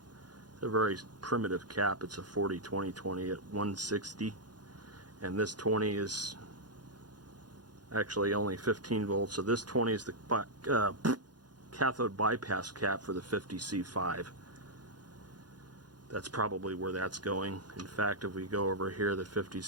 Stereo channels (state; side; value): late; left; 0.69 ms